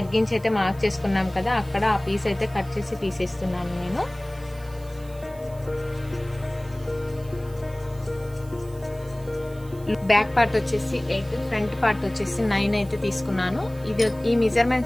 అయితే మార్క్ చేసుకున్నాం కదా, అక్కడ ఆ పీస్ అయితే కట్ చేసి తీసేస్తున్నాను నేను. బ్యాక్ పార్ట్ వచ్చేసి 8, ఫ్రంట్ పార్ట్ వచ్చేసి 9 అయితే తీసుకున్నాను. ఈ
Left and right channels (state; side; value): noise; right; hiss, 24 dB below the sound